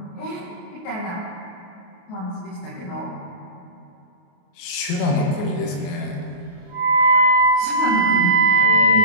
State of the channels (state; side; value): late; right; 28 ms